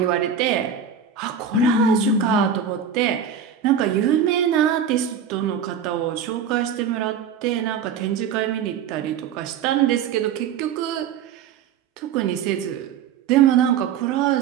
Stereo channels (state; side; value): quieter; left; 7.4 dB